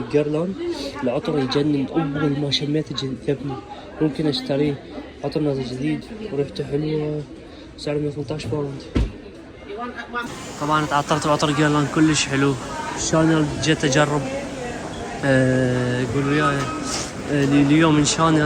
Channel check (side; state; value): both; identical; correlation 1.00